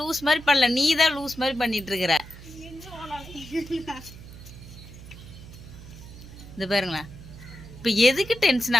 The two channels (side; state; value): right; noise; hum, 16 dB below the sound